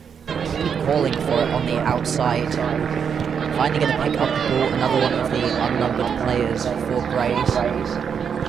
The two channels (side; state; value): left; quieter; 7.1 dB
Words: Keep calling for it on the outside. Finally going to pick up the ball. Another one of the unnumbered players for Grays.